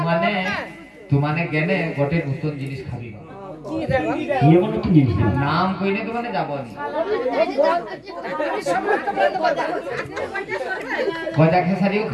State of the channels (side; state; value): both; identical; correlation 1.00